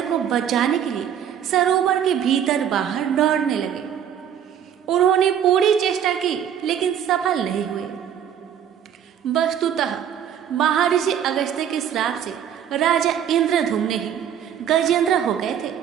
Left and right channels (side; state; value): left; quieter; 9.2 dB